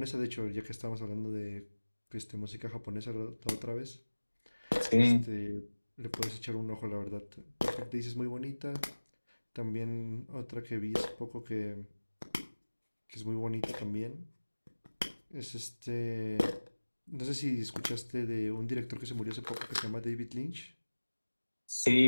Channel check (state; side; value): inverted; both; correlation -1.00